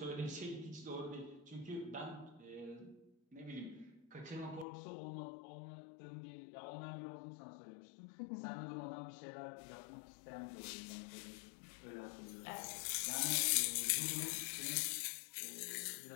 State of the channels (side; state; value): right; drops out; at 4.7 s